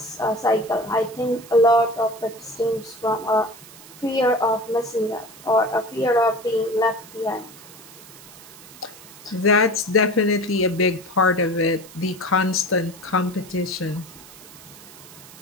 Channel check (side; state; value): right; noise; hiss, 19 dB below the sound